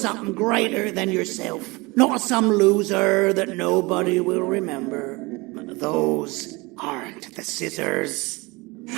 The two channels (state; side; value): quieter; left; 24.6 dB